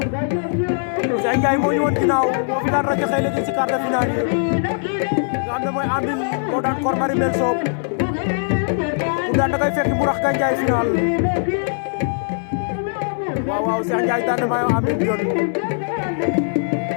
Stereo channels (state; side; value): silent; right; digital silence